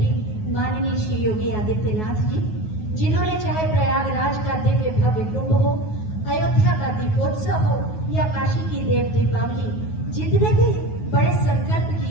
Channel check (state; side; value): late; right; 9.4 ms